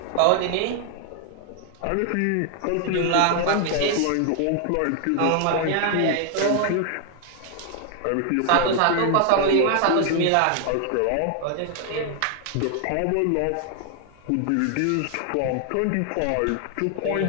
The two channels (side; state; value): both; different; correlation 0.00